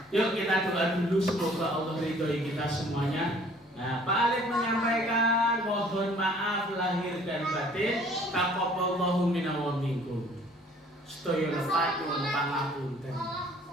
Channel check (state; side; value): normal; both; correlation 0.56